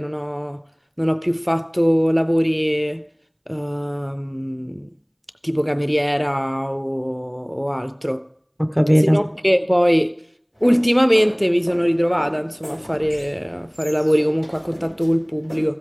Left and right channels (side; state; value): both; identical; correlation 1.00